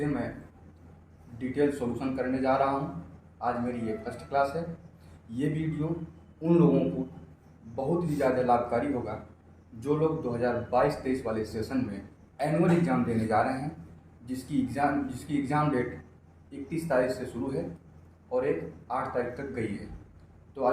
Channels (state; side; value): identical; both; correlation 1.00